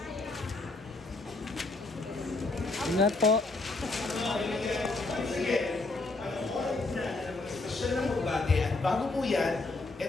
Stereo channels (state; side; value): quieter; right; 3.3 dB